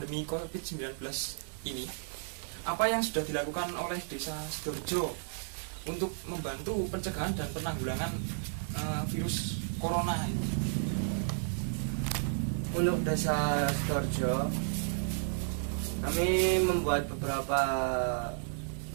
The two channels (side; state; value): left; silent; 56 dB below the other